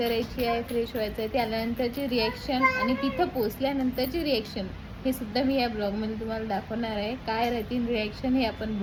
आहे, फ्रेश व्हायचं आहे. ते आल्यानंतरची रिॲक्शन आणि तिथं पोचल्यानंतरची रिॲक्शन हे सुद्धा मी या ब्लॉगमध्ये तुम्हाला दाखवणार आहे. काय राहतील रिॲक्शन हे आपण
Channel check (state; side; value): identical; both; correlation 1.00